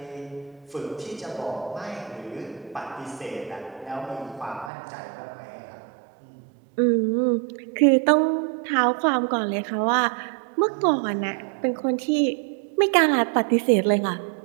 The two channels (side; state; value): left; drops out; at 4.7 s